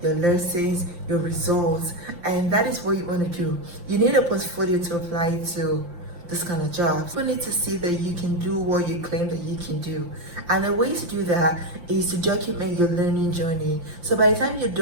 your lessons, your results, and that is what you want to do. You need a portfolio to apply to this kind of jobs. You need to see that you can do what you claim that you can do. And the way to do that is to document your learning journey. So by the time you're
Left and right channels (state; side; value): late; left; 5.8 ms